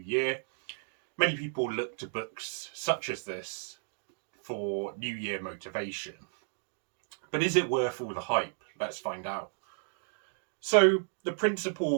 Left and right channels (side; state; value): left; silent; digital silence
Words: Many people look to books such as this for New Year motivation. But is it worth all the hype? Let's find out. So, the